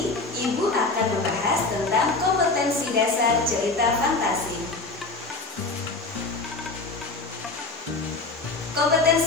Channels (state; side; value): quieter; right; 3.6 dB